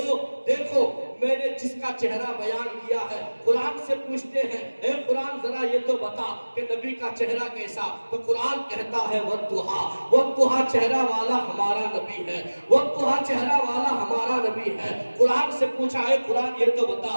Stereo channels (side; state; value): both; inverted; correlation -1.00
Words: دیکھو میں نے جس کا چہرہ بیان کیا ہے، قرآن سے پوچھتے ہیں اے قرآن ذرا یہ تو بتا کہ نبی کا چہرہ کیسا، تو قرآن کہتا ہے والضحیٰ چہرہ والا ہمارا نبی ہے، والضحیٰ چہرہ والا ہمارا نبی ہے۔ قرآن سے پوچھا ہے قرآن یہ تو بتا